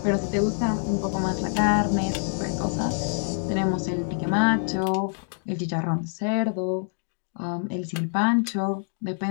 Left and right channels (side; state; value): right; silent; digital silence